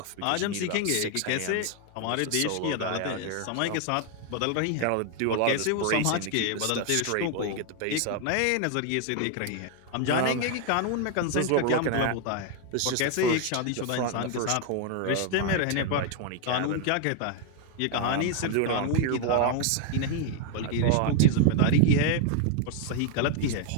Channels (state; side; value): different; both; correlation 0.00